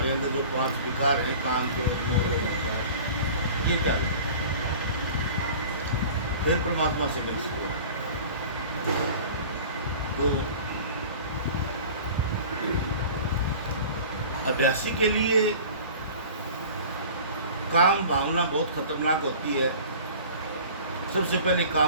अंदर जो 5 विकार हैं, काम, क्रोध, मोह, लोभ, अहंकार, ये त्याग दे, फिर परमात्मा से मिल सको। तो अभ्यासी के लिए काम भावना बहुत खतरनाक होती है। सबसे पहले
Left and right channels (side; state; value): both; inverted; correlation -0.42